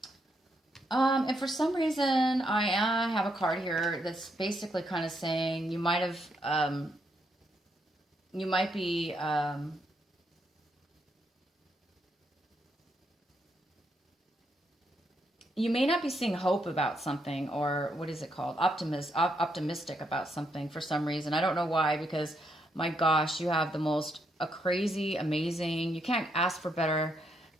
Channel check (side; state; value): both; normal; correlation 0.77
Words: And for some reason, I have a card here that's basically kind of saying you might be, you may not be seeing hope about something, or what is it called? Optimistic about something for some reason. I don't know why, because my gosh, you have the most crazy, amazing, you can't ask for better